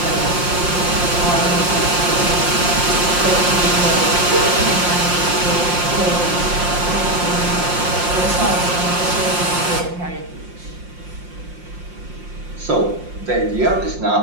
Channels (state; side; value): late; left; 5.6 ms